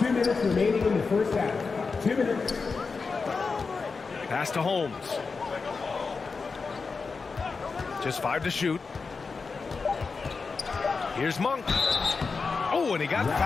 minutes remaining in the first half. 2 minutes. Pass to Holmes. Just 5 to shoot. Here's Monk. Oh, and he got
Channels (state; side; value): quieter; right; 4.6 dB